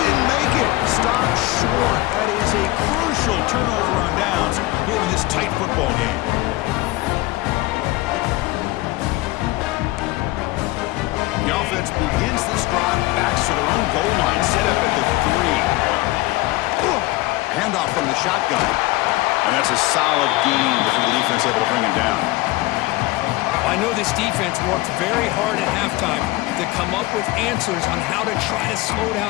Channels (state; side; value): quieter; right; 19.7 dB